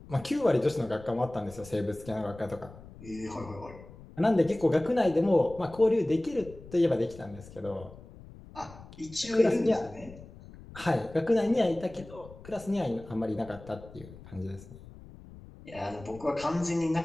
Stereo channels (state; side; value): noise; left; rumble, 18 dB below the sound